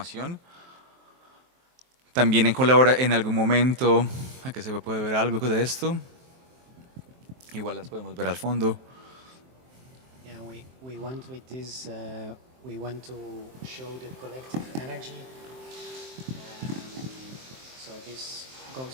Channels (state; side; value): late; left; 23 ms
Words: También en algún momento, aquí se puede ver algo de esto. Igual las podemos ver al fondo. Yeah, we want with this, we want to show the collective energy. So this